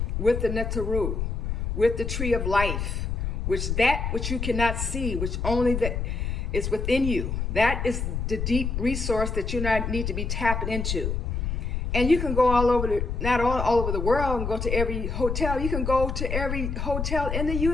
with the Netaru, with the tree of life, which you cannot see, which only that is within you. That is the deep resource that you need to be tapping into. And you can go all over not all over the world and go to every hotel. You can go to every hotel in the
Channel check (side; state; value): left; noise; rumble, 2 dB below the sound